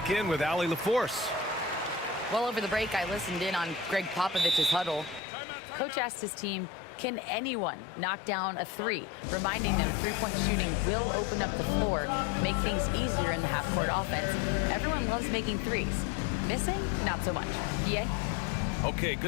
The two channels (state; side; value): drops out; right; at 5.2 s